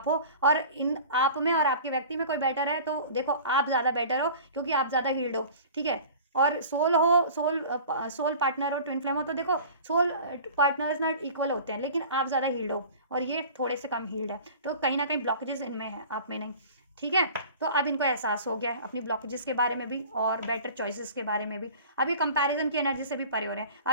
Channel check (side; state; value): both; inverted; correlation -0.42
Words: हो, और इन आप में और आपके व्यक्ति में कोई बेटर है तो देखो आप ज़्यादा बेटर हो क्योंकि आप ज़्यादा हील्ड हो, ठीक है। और सोल हो, सोल पार्टनर हो, ट्विन फ्लेम हो, तो देखो सोल पार्टनर्स ना इक्वल होते हैं, लेकिन आप ज़्यादा हील्ड हो और ये थोड़े से कम हील्ड है, तो कहीं ना कहीं ब्लॉकेजेस इनमें है, आप में नहीं, ठीक है। तो अब इनको एहसास हो गया है अपनी ब्लॉकेजेस के बारे में भी और बेटर चॉइसेस के बारे में भी। अब ये कंपैरिजन की एनर्जी से भी परे हो रहे हैं,